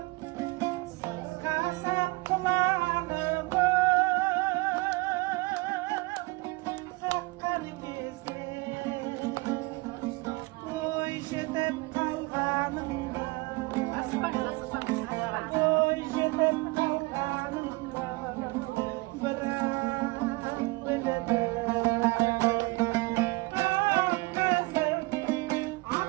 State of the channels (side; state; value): left; quieter; 24.4 dB